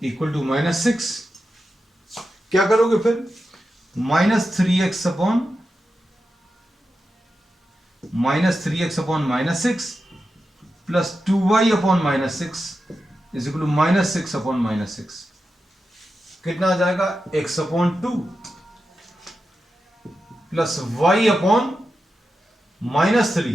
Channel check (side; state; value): both; normal; correlation 0.90